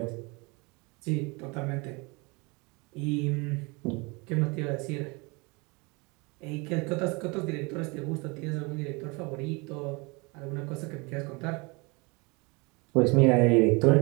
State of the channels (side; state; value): left; quieter; 28.2 dB